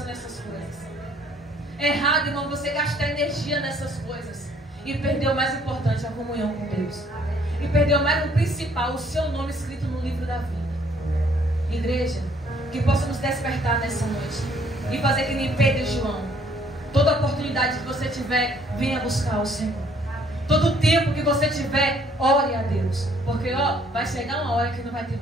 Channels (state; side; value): normal; both; correlation 0.63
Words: nessas coisas. Errado, irmão, você gastar energia nessas coisas. E perder o mais importante, a comunhão com Deus. E perder o mais o principal, o seu nome escrito no livro da vida. Igreja, que possa nos despertar nessa noite. E fazer que nem Pedro e João. Toda oportunidade que você tiver, venha buscar o Senhor. Todo tempo que você tiver, ore a Deus. Porque, vai chegar uma hora que não vai ter